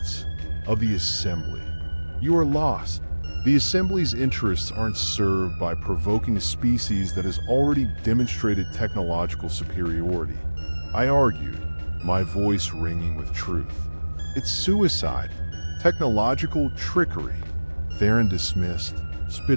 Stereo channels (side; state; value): both; inverted; correlation -1.00